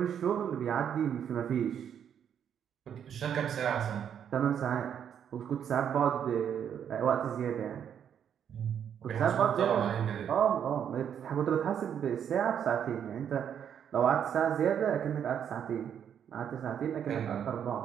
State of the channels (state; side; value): quieter; left; 8.6 dB